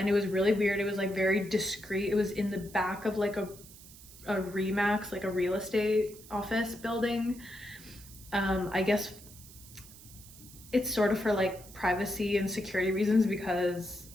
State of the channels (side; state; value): right; noise; hiss, 19 dB below the sound